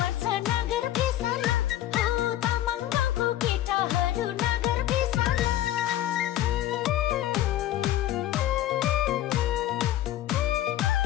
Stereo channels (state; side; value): quieter; right; 13.5 dB